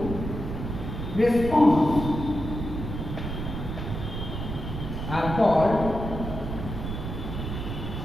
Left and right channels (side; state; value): right; noise; rumble, 5 dB below the sound